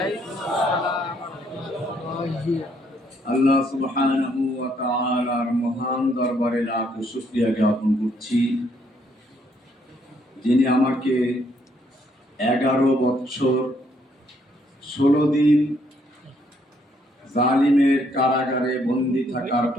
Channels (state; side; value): normal; both; correlation 0.70